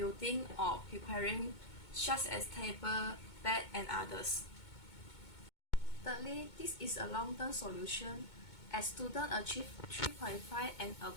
or preparing such as table, bed and others. Thirdly, this is a long-term solution. As students achieve 3.5 and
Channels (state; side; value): late; right; 2.2 ms